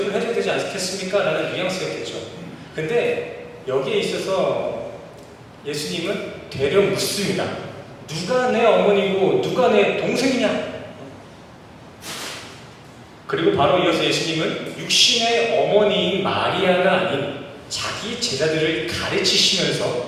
해줘야 되지 않겠습니까? 라는 뉘앙스였겠죠. 근데 여기에 있어서 예수님은 되려 묻습니다. 누가 내 어머니고 누가 내 동생이냐? 그리고 바로 이어서 예수님은 육신의 어머니인 마리아가 아닌 자기 제자들을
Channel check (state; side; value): identical; both; correlation 1.00